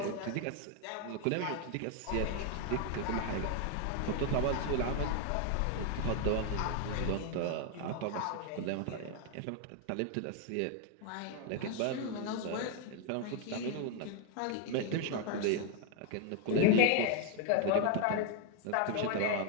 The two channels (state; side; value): different; both; correlation 0.00